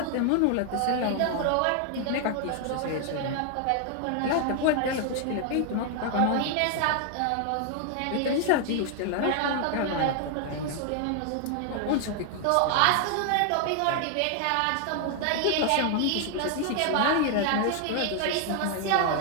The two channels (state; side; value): different; both; correlation 0.00